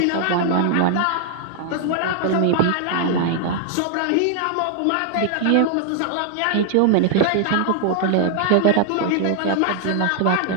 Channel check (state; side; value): different; both; correlation 0.00